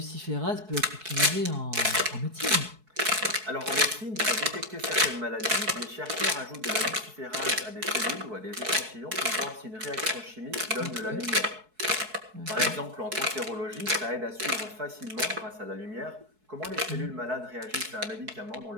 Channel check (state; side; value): late; left; 4.6 ms